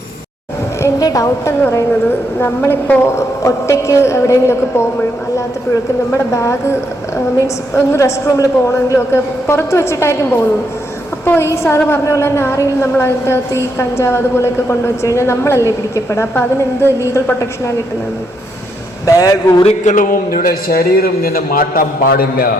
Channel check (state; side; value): normal; both; correlation 0.77